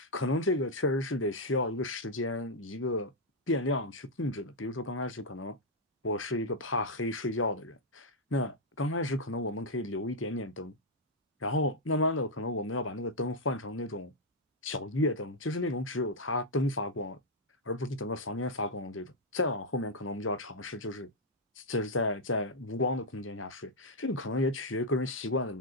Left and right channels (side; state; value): both; normal; correlation -0.03